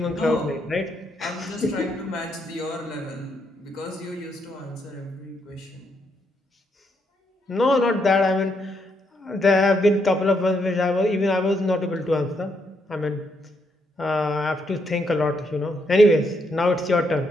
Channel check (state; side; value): normal; both; correlation 0.76